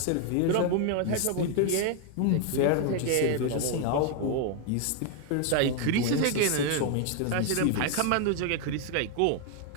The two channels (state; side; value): different; both; correlation 0.00